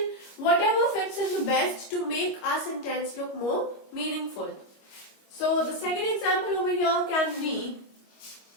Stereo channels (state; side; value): late; right; 25 ms